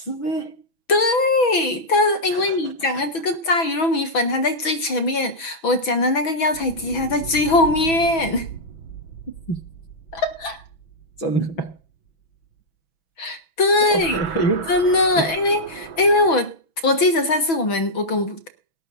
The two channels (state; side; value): late; right; 6.1 ms